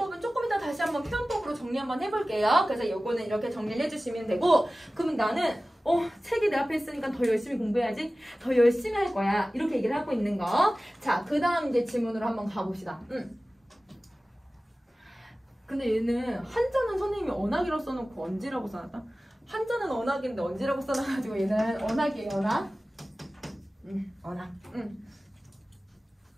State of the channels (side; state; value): both; normal; correlation 0.97